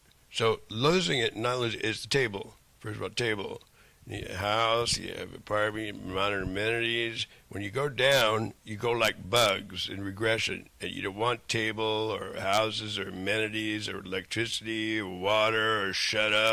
So losing it, not losing it, is the table. First of all, table. You have a house, you have apartment, modern amenities. When you go down, you go like bugs in regression. And you don't want table or houses or amenities or electricity or water or shut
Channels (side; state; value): both; identical; correlation 1.00